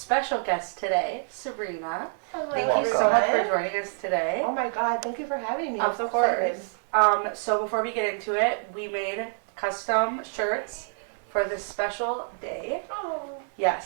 guest today, Sabrina. Hello. Thank you so much for joining us today. Oh my God, thank you for having me. Of course. So before we get into it, we made custom shirts for this special day. Oh.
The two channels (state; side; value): silent; left; 60 dB below the other